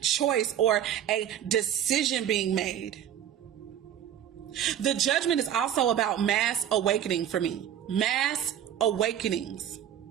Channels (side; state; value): left; quieter; 10.3 dB